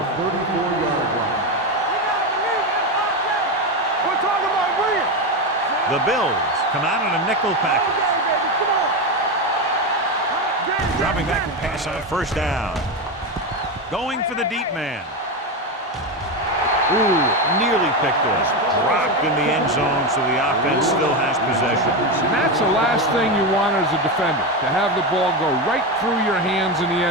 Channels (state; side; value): normal; both; correlation 0.14